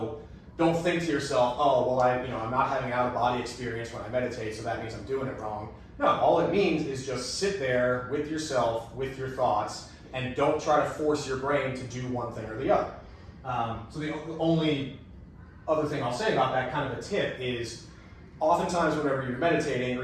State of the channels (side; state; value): both; identical; correlation 1.00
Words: don't think to yourself, oh, well, I'm not having out-of-body experience when I meditate, so that means I'm doing it wrong. No, all it means is just sit there with yourself, with your thoughts, and don't try to force your brain to do one thing or the other. So the only other thing I'll say about that, kind of a tip, is oftentimes whenever you're meditating or